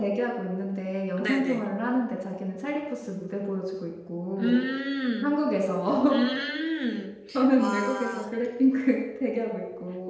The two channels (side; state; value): both; identical; correlation 1.00